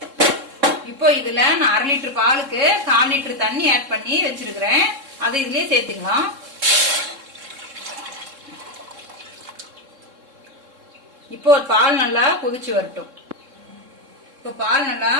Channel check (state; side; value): late; left; 3.7 ms